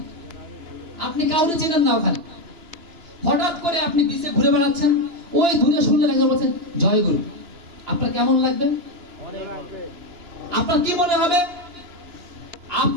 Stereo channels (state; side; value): late; left; 2.9 ms